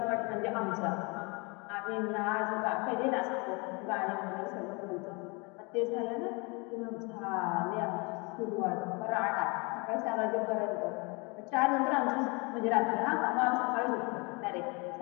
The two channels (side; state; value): right; quieter; 29.6 dB